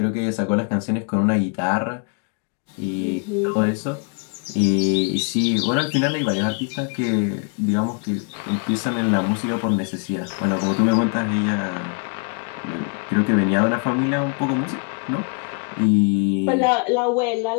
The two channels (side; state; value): right; quieter; 37.8 dB